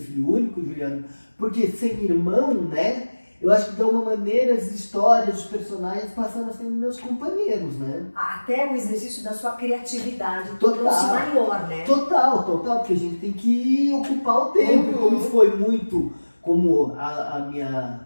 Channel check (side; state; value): both; inverted; correlation -1.00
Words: filho único, Juliana, porque sem irmão, né? Eu acho que de alguma maneira as histórias, os personagens passaram a ser meus companheiros, né? Até o exercício da sua criatividade tornou-se maior, né? Total, porque a gente tem que ocupar o tempo. E como foi muito, como